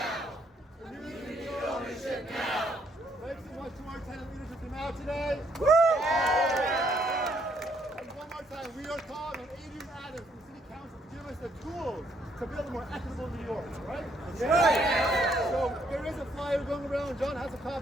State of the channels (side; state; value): both; normal; correlation 0.70